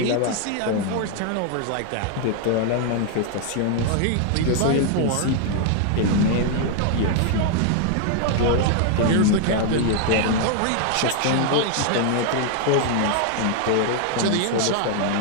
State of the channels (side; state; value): both; different; correlation 0.00